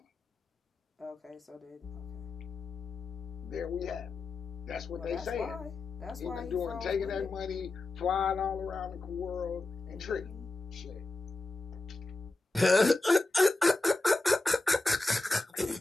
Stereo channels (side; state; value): right; quieter; 3.1 dB